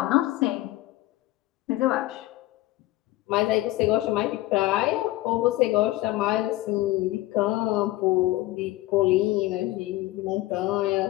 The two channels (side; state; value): right; quieter; 17.6 dB